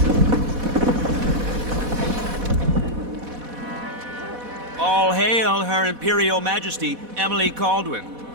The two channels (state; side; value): late; left; 4.1 ms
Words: All hail Her Imperial Majesty, Emily Caldwin.